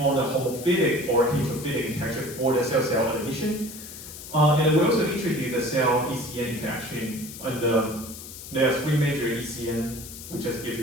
the homophilic or heterophilic interaction for the cell-cell adhesion. And we also introduced the cell ECN interaction. And there are three major ECN, we just give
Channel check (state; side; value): noise; left; hiss, 13 dB below the sound